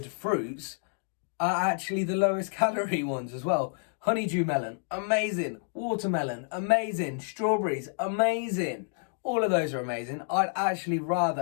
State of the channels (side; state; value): right; silent; digital silence